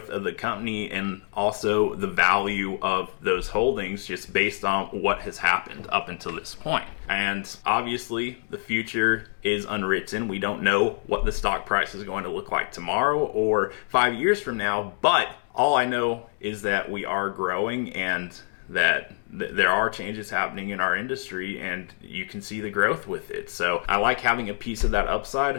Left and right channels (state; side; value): silent; right; digital silence